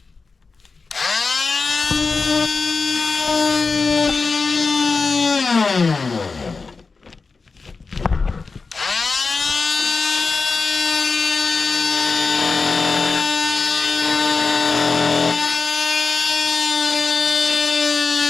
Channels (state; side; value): quieter; right; 4.4 dB